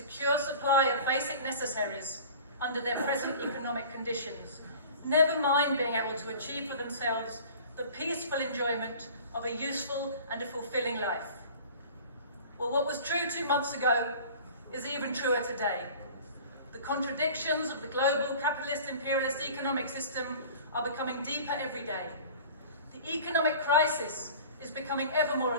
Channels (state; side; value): inverted; both; correlation -0.43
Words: supply of basic necessaries under their present economic conditions, never mind being able to achieve for themselves the peaceful enjoyment of a useful and a fulfilling life. Well, what was true 2 months ago is even truer today. The contradictions of the global capitalist imperialist economic system are becoming deeper every day. The economic crisis is becoming ever more